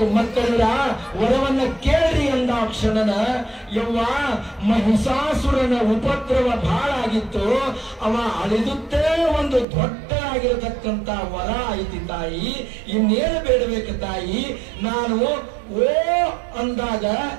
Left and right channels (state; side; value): drops out; left; at 9.7 s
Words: ಮಕ್ಕಳ ವರವನ್ನ ಕೇಳ್ರಿ ಅಂದ ಕ್ಷಣನ ಯವ್ವ ಮಹಿಷಾಸುರನ ಉಪದ್ರವ ಬಹಳ ಆಗಿತ್ತು. ಅವ ಅಳಿದುತ್ತೇ ಒಂದು ದೊಡ್ಡದಾಗಿರತಕ್ಕಂತ ವರ ಐತಿ ತಾಯಿ, ಇನ್ನೇನು ಬೇಡಬೇಕು ತಾಯಿ, ನಾನು ಓ ಅಂದಾಗ